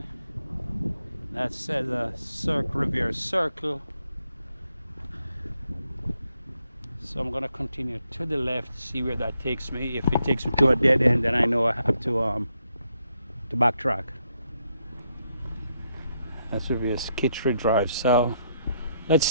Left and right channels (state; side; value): inverted; both; correlation -0.78